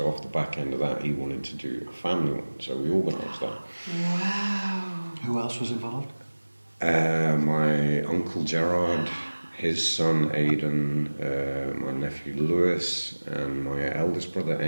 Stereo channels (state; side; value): inverted; both; correlation -1.00